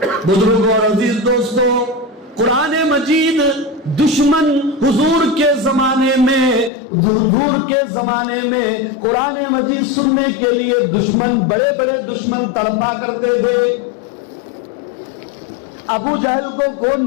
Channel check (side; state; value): right; drops out; at 6.7 s